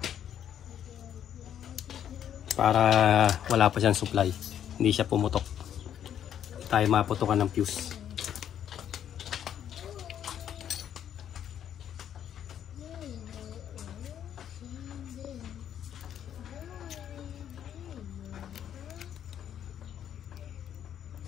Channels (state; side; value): quieter; right; 9.8 dB